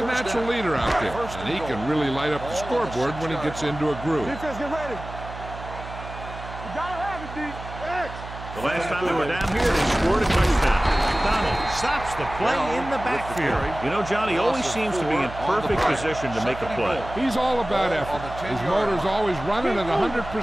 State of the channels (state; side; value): noise; right; hum, 12 dB below the sound